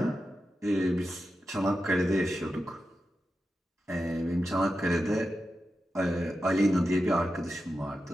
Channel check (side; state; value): both; normal; correlation 0.90